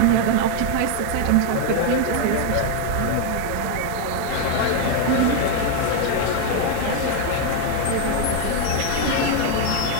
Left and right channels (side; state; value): both; different; correlation 0.01